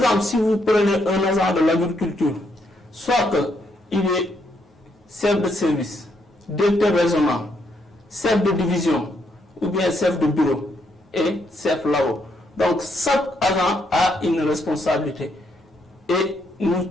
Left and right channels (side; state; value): both; normal; correlation 0.76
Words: si vous prenez un agent de l'agriculture, soit qu'il est chef de service, directeur régional, chef de division, ou bien chef de bureau et chef là-haut. Donc chaque agent a une responsabilité. Et nous